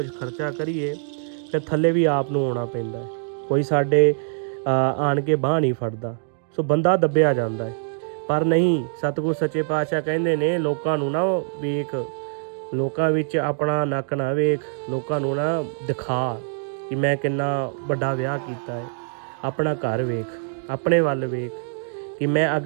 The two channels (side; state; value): left; silent; digital silence